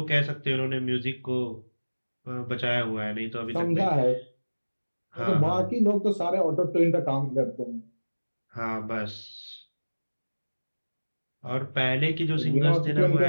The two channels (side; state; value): both; inverted; correlation -1.00